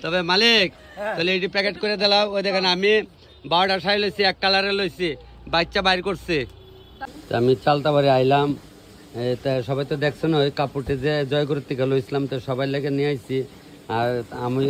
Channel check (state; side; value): identical; both; correlation 1.00